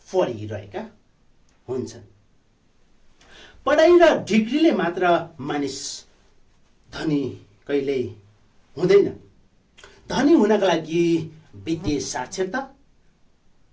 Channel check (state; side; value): identical; both; correlation 1.00